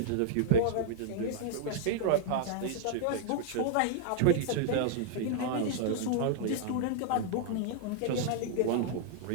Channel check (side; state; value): both; different; correlation -0.01